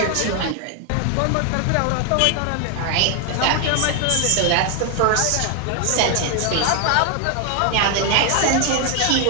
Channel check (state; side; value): different; both; correlation 0.01